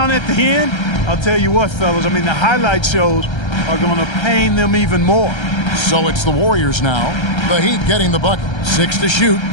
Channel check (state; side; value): late; right; 1.3 ms